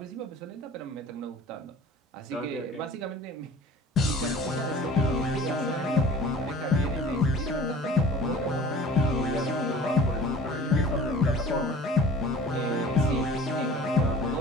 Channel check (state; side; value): normal; both; correlation 0.43